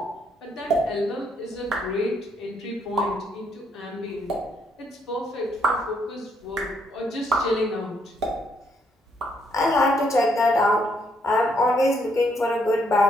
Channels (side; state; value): both; normal; correlation 0.73